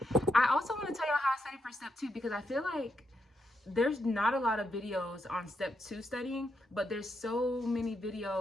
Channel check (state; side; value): normal; both; correlation 0.81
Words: I also want to tell y'all how I studied for step 2 because I feel like there's not a lot of videos on step 2 studying, but there's so many